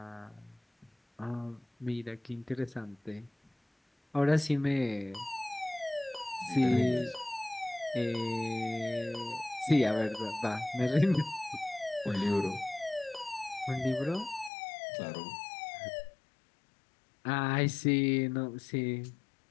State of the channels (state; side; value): drops out; right; at 14.5 s